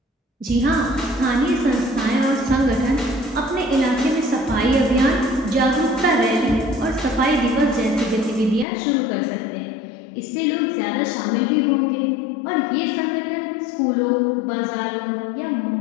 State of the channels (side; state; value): right; drops out; at 8.7 s